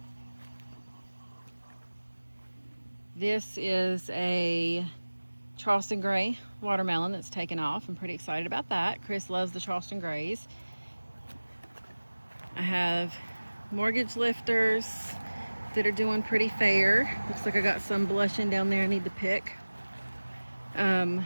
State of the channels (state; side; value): inverted; both; correlation -1.00